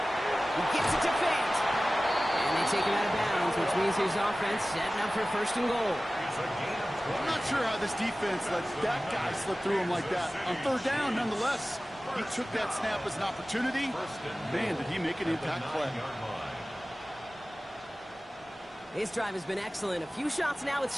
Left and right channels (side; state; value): both; normal; correlation 0.97